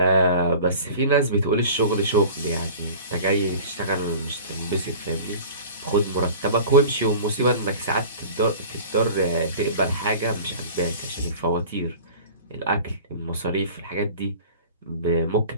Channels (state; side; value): inverted; both; correlation -0.40